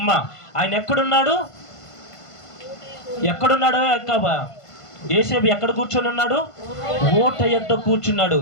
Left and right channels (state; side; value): late; right; 1.5 ms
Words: ఆయన ఎక్కడున్నాడు? యేసేబు ఎక్కడ కూర్చొని ఉన్నాడు? ఓట యొద్ద కూర్చున్నాడు.